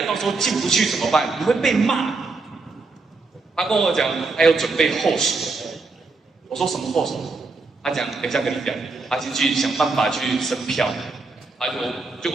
到时候进不去怎么办？你会被骂。他跟我讲还有准备后手。我说什么后手？他讲等一下跟你讲，他先去想办法去升票。结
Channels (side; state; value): left; quieter; 3.8 dB